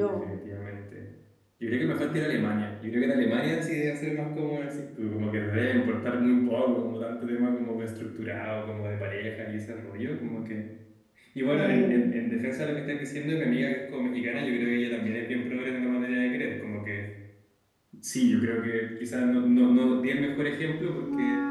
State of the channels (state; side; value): identical; both; correlation 1.00